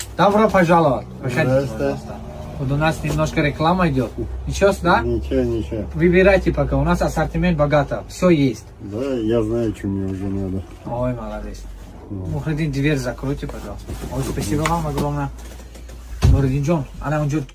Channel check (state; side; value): identical; both; correlation 1.00